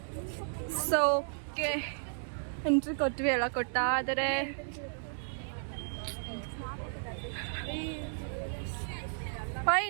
ಸೊ ಓಕೆ, ಎಂಟ್ರಿ ಕೊಟ್ವಿ, ಎಲ್ಲ ಕೊಡ್ತಾ ಇದ್ದಾರೆ. ಬಾಯ್,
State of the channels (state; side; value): silent; left; digital silence